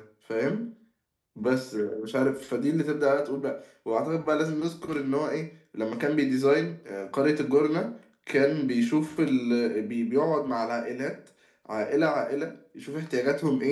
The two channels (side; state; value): both; identical; correlation 1.00